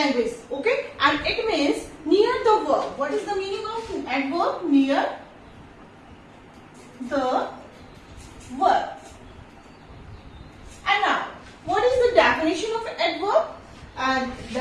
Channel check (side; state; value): both; identical; correlation 1.00